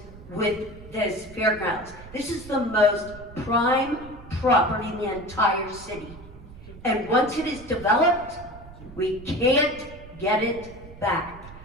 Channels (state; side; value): noise; right; rumble, 17 dB below the sound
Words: with this fairgrounds. This is the most prime property in the entire city. And once it is developed, we can't get it back.